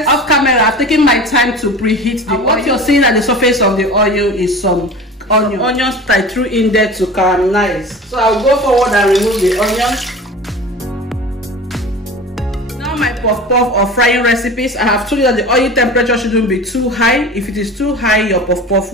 Off camera, I've taken my time to preheat the oil. What you're seeing at the surface of the oil is some onions I threw in there to caramelize. So I'll go forward and remove the onions. Now my puff-puff or frying recipes, I have told you that the oil temperature shouldn't be too high. If it is too high, your puff-puff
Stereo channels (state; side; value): normal; both; correlation 0.36